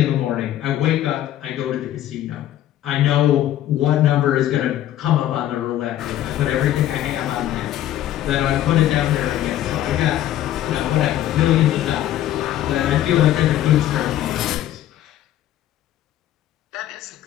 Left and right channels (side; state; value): right; quieter; 12.5 dB